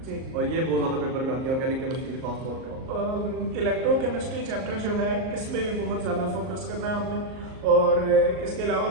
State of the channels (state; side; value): late; left; 38 ms